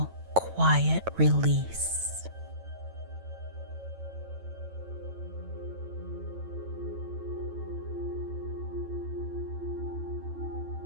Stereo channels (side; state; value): left; late; 9.1 ms